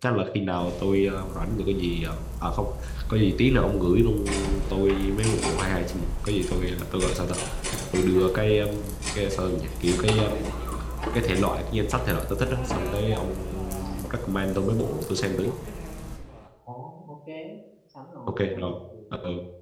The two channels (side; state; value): both; identical; correlation 1.00